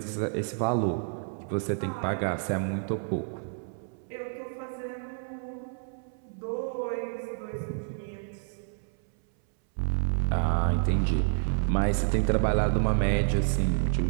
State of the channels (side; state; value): left; silent; 58 dB below the other